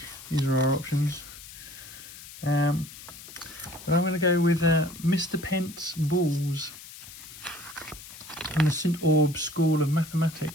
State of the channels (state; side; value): noise; left; hiss, 16 dB below the sound